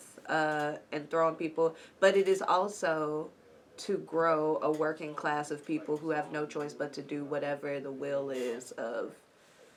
and throwing people. But it is also to grow a working class of people who have no choice but to do whatever the will is of,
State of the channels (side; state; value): both; identical; correlation 1.00